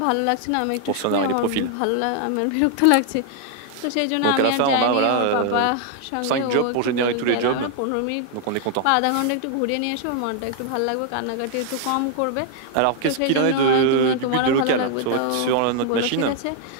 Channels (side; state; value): both; different; correlation 0.00